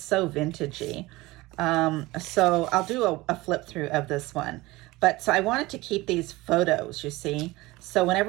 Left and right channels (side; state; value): left; quieter; 20.4 dB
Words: so vintagey. So I'll do a flip through of this one. But so I wanted to keep these photos, you see. So